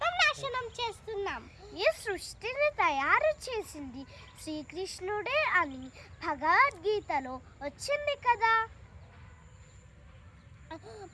నాశనం చేస్తున్నాం. ఈ సృష్టిని తయారు చేసింది శ్రీకృష్ణుడే అని భగవద్గీతలో వచ్చింది కదా.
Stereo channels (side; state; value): both; identical; correlation 1.00